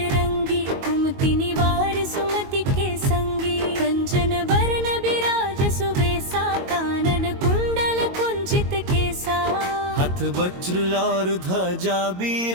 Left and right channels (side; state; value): left; late; 22 ms